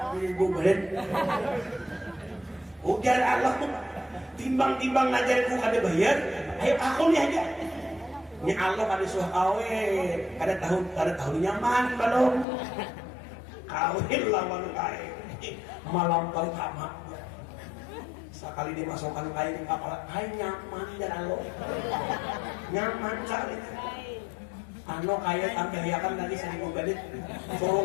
4.000 balik. Ujar Allah tuh timbang-timbang ngajarin kada bayar, ayo aku nih aja. Ini Allah pada suah kawin, kada tahu nyaman belum. Kawin lawan kain, malam kali tamat. Sekali dimasukkan kain kapal, kain nyaman dan Allah, nyaman sekali. Ano kaya tambahiakan tadi 1.000 bedit,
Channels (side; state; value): right; drops out; at 12.5 s